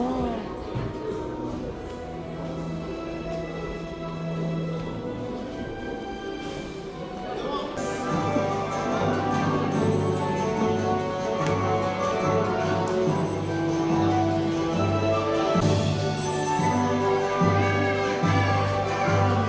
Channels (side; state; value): both; identical; correlation 1.00